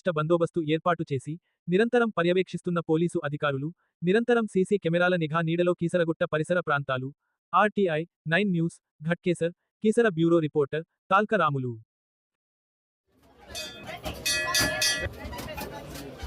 బందోబస్తు ఏర్పాటు చేసి, నిరంతరం పర్యవేక్షిస్తున్న పోలీసు అధికారులు, నిరంతరం సీసీ కెమెరాల నిఘా నీడలో కీసరగుట్ట పరిసర ప్రాంతాలు. RTI 9 news, Ghatkesar, Keesara bureau reporter, Talka Ramulu.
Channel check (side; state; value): both; identical; correlation 1.00